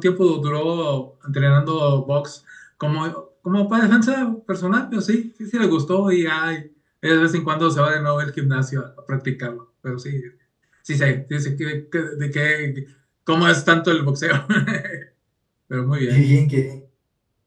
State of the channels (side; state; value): both; identical; correlation 1.00